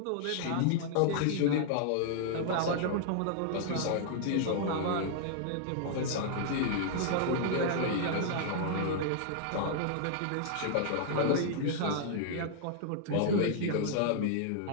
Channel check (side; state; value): both; different; correlation -0.01